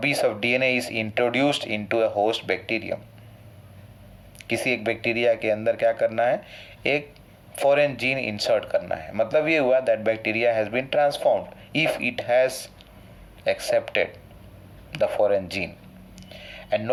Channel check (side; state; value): both; identical; correlation 1.00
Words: of DNA is introduced into a host bacterium. किसी एक bacteria के अंदर क्या करना है, एक फॉरेन जीन इंसर्ट करना है. मतलब ये हुआ that bacteria has been transformed if it has accepted the foreign gene. And